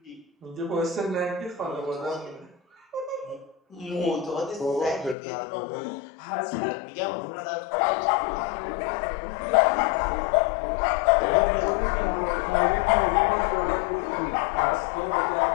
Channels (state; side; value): drops out; right; at 5.2 s